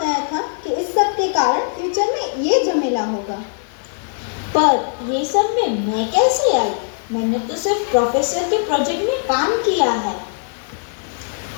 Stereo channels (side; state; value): right; silent; 55 dB below the other